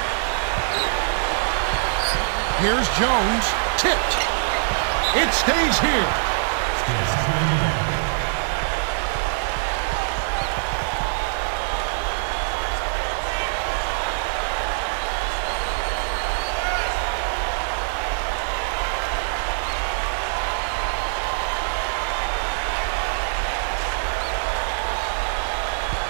Here's Jones. Tipped. It stays here.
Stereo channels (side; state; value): left; silent; digital silence